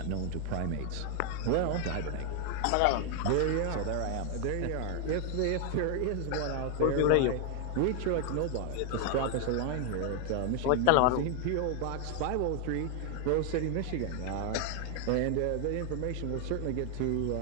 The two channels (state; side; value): different; both; correlation 0.00